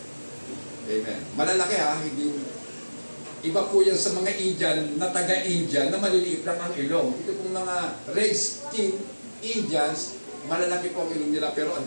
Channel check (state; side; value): inverted; both; correlation -1.00